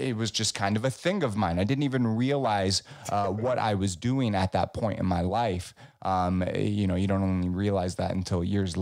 was just kind of a thing of mine. I didn't even realize what I was doing at that point in my life. You don't only realize that until years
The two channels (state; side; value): identical; both; correlation 1.00